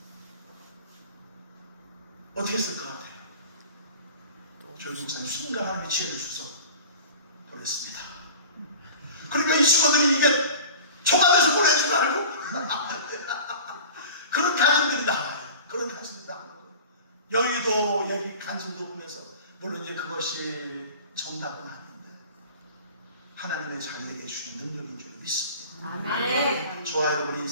어떻게 했을 것 같아요? 조용기 목사님 순간 하나님이 지혜를 주셔서 보냈습니다. 그러니까 이 직원들이 이게 초과돼서 보내는 줄 알고 그런 간증들이 나와요. 그런 간증들이 나와요. 여의도 여기 간증도 보면서 물론 이제 그것이 정답은 아닌데 하나님의 자녀에게 주신 능력인 줄 믿습니다. 아멘. 저와 여러분의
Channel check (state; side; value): inverted; both; correlation -0.40